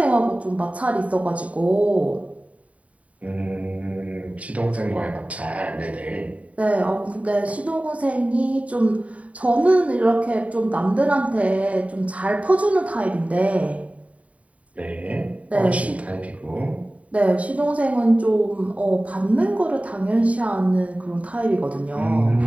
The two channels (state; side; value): late; left; 0.067 ms